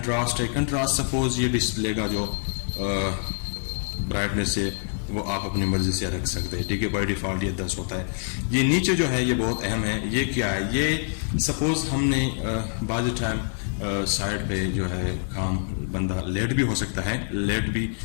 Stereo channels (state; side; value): silent; right; digital silence